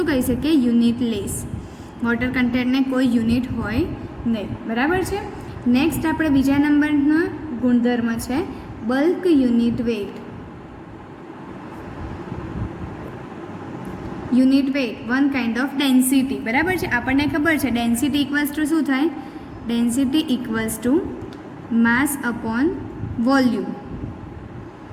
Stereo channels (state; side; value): identical; both; correlation 1.00